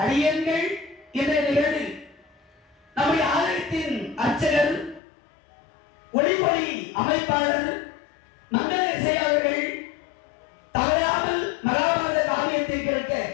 அடியங்கள் இன்றைய நிகழ்வில் நம்முடைய ஆலயத்தின் அர்ச்சகர், ஒளிவொலி அமைப்பாளர் மங்கள இசை அவர்கள் தவறாமல் மகாபாரத காவியத்தை கேட்க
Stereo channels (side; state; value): right; drops out; at 5.0 s